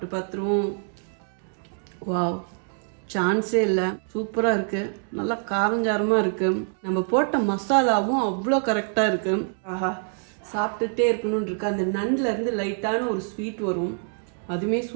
பார்த்துருவோம். வாவ், சான்ஸே இல்லை, சூப்பராக இருக்குது. நல்லா காரஞ்சாரமாக இருக்குது. நம்ம போட்ட மசாலாவும் அவ்வளோ கரெக்டாக இருக்குது. ஆஹா, சாப்பிட்டுட்டே இருக்கணும்னு இருக்கு. அந்த நண்டுலேருந்து லைட்டான ஒரு ஸ்வீட் வரும், அதுவுமே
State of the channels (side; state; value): left; silent; 59 dB below the other